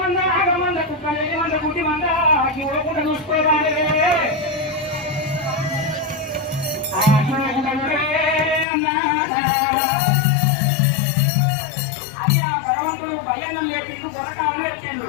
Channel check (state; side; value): drops out; right; at 8.7 s